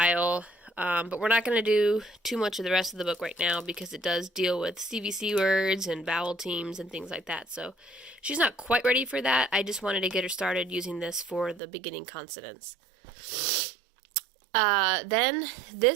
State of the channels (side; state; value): left; drops out; at 11.6 s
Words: But we're not going to do too much of the rest of the book right now because it does deal with CVC words and vowel teams and things like that. So she's not quite ready for that. I just wanted to get her started using this for the beginning consonants. Then